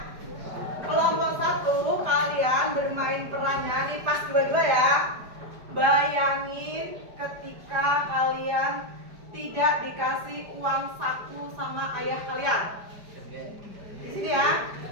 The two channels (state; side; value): late; left; 5.0 ms